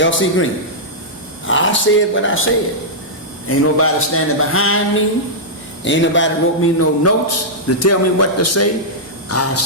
L.C. Green. I said what I said. Ain't nobody standing behind me. Ain't nobody wrote me no notes to tell me what to say. I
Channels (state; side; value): normal; both; correlation -0.10